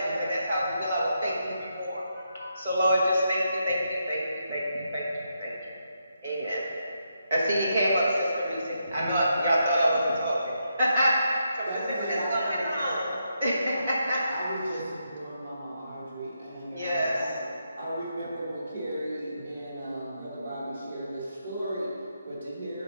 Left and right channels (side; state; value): both; inverted; correlation -0.81